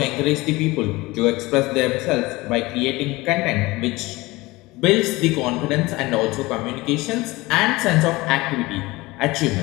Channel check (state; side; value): quieter; right; 21.2 dB